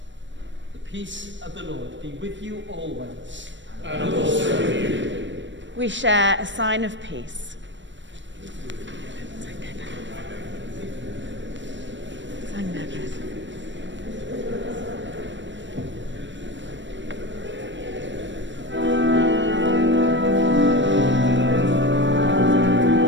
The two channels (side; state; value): left; late; 0.54 ms